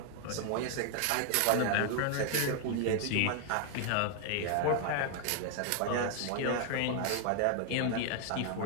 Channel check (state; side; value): different; both; correlation 0.00